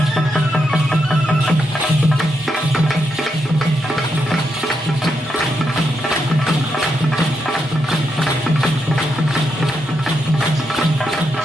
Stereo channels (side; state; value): both; normal; correlation 0.82